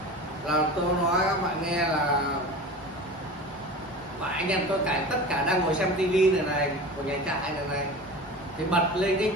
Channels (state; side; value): normal; both; correlation 0.34